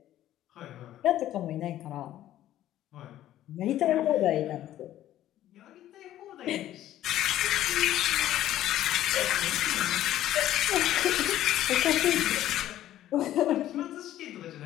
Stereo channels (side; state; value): right; quieter; 13.1 dB